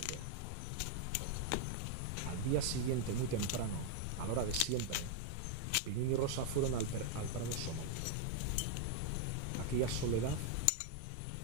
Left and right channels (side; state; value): both; different; correlation 0.00